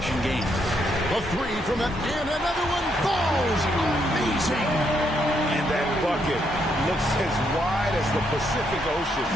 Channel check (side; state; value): both; normal; correlation 0.76